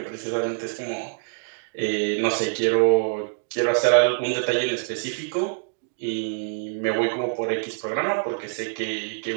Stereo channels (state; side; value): silent; left; digital silence